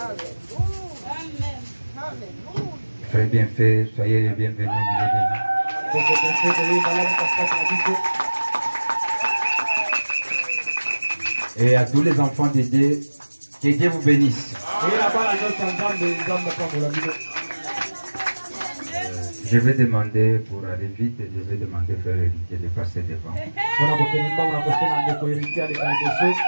Frère bien fait, soyez les bienvenus au milieu de nous. Et à tous les enfants de Dieu, que Dieu vous bénisse. Je vais demander, pour aller vite, je vais demander au frère héritier de passer devant.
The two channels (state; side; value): inverted; both; correlation -1.00